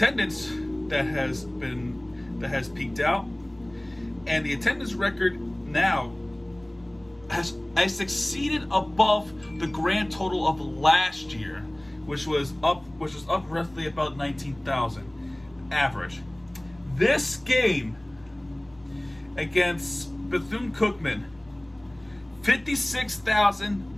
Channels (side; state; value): left; noise; rumble, 29 dB below the sound